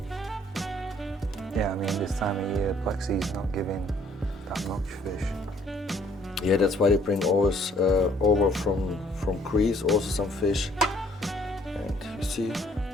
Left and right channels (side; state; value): both; normal; correlation 0.62